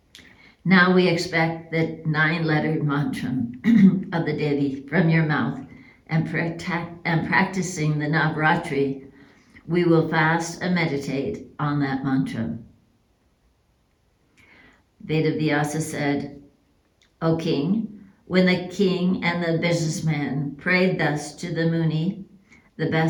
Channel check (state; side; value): identical; both; correlation 1.00